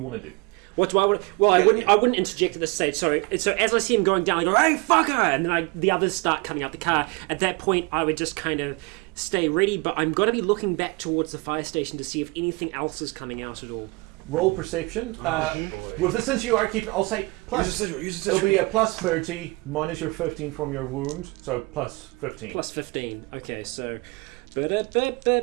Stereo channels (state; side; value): quieter; left; 26.2 dB